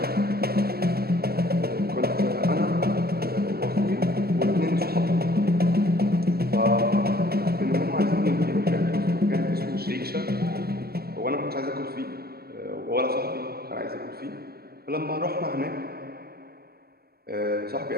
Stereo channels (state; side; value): late; left; 0.45 ms